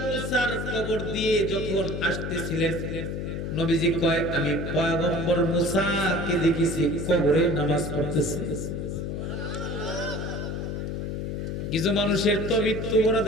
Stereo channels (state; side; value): noise; left; hum, 4 dB below the sound